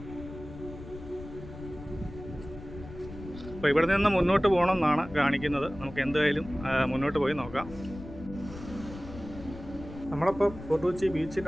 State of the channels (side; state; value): left; noise; rumble, 14 dB below the sound